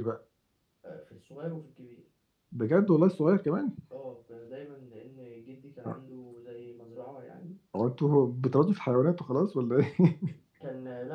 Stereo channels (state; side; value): identical; both; correlation 1.00